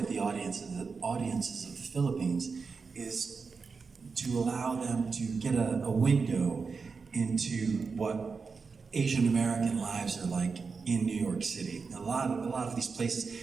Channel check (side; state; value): left; quieter; 4.9 dB